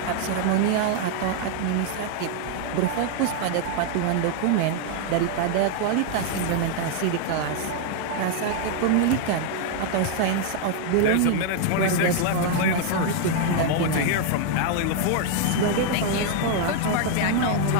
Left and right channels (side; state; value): both; different; correlation 0.00